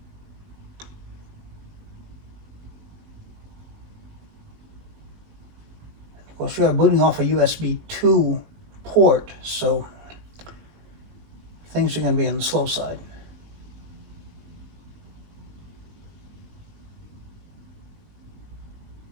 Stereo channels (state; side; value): late; left; 20 ms